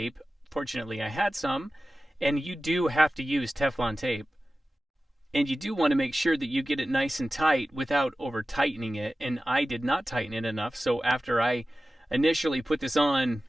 Fortunately, I had some, and you do have to use Teflon tape. And you do want to make sure that you get it nice and tight without over tightening it, and I did not tighten it enough, so after I initially put this on,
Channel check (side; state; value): both; normal; correlation 0.95